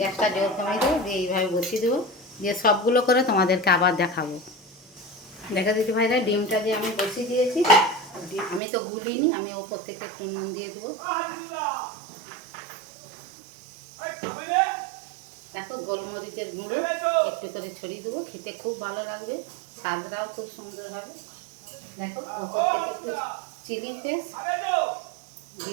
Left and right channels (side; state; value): left; drops out; at 8.6 s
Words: জোর কমিয়ে দেবো, দিয়ে এইভাবে বসিয়ে দেবো। দিয়ে সবগুলো করে তোমাদেরকে আবার দেখাবো। দেখা দিতে ভাইরা, ডিমটা যে আমি বসিয়ে দিয়েছি, আমি তো গুলিনি, আমি ওপর থেকে একটু নুন দিয়ে দেবো। দেখো গোলমরিচের গুঁড়ো একটু করে ছড়িয়ে দেবো, খেতে খুব ভালো লাগবে, স্বাদটাও খুব সুন্দর হবে। দেখো ওপর থেকে একটু চিলি ফ্লেক্স